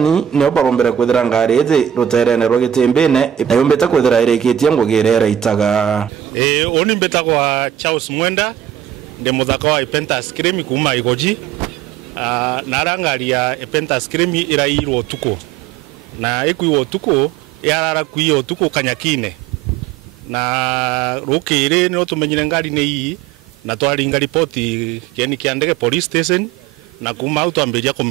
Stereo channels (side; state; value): left; quieter; 10.1 dB